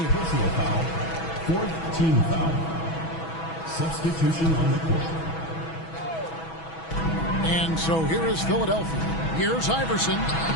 Personal foul. Fourth team foul. Substitution on the court. And so here is Philadelphia. Here's Iverson.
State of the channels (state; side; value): late; right; 6.1 ms